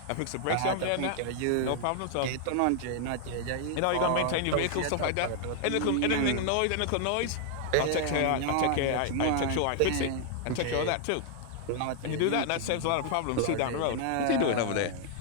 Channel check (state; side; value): different; both; correlation 0.00